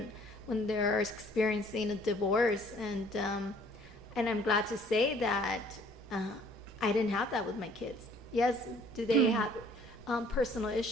when they're experiencing a divorce, and I'm glad to say that I didn't have that with my kids. Yes, do they have personal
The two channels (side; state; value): both; normal; correlation 0.57